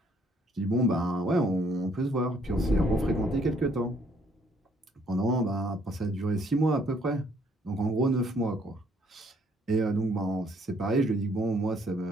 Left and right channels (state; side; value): normal; both; correlation 0.65